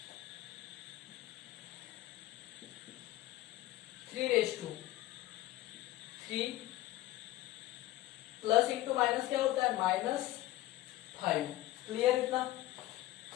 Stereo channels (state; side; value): quieter; right; 16.5 dB